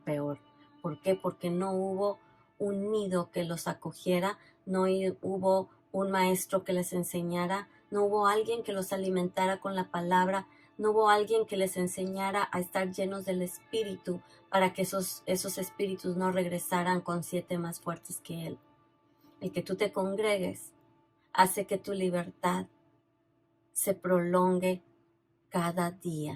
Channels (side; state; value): both; identical; correlation 1.00